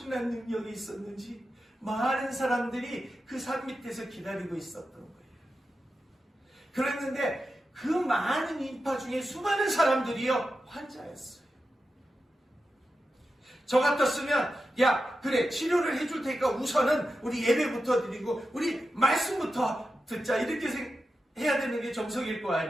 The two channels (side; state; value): both; normal; correlation 0.91